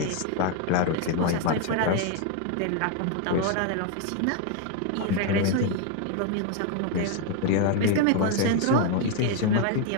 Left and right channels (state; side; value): different; both; correlation 0.01